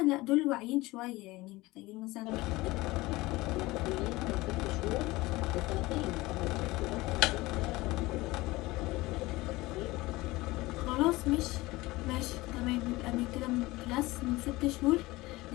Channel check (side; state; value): right; quieter; 20.2 dB